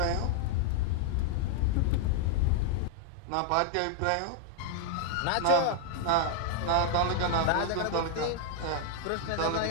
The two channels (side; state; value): both; different; correlation -0.01